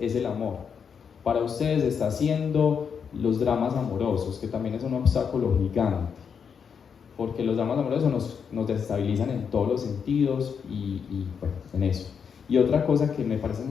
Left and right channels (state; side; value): quieter; right; 6.8 dB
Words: el amor. Para ustedes está siendo los dramas amorosos, que también es un obstáculo gigante, porque los dramas amorosos nos desestabilizan en todos los sentidos y bueno, en eso. Y otra cosa que me parece